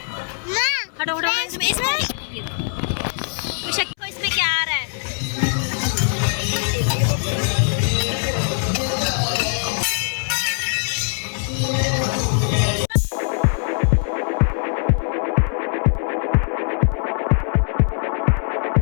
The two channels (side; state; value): right; silent; 65 dB below the other